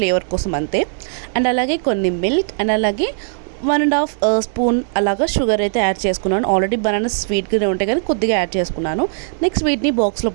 కోసం అంతే. అండ్ అలాగే కొన్ని మిల్క్ అండ్ అలాగే 1.5 స్పూన్ అలాగా షుగర్ అయితే యాడ్ చేసుకున్నాను. ఆల్రెడీ బనానా స్వీట్గానే ఉంటాయి కానీ కొద్దిగా యాడ్ చేసుకున్నాను. నెక్స్ట్ వీటిని బాక్స్లో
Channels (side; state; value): left; silent; digital silence